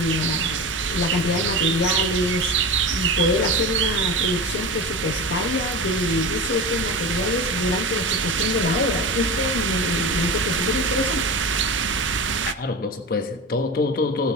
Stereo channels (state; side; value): normal; both; correlation 0.27